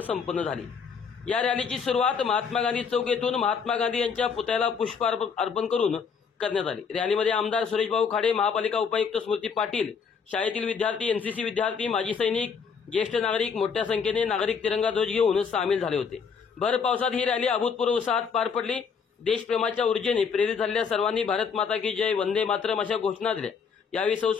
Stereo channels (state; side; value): quieter; right; 6.0 dB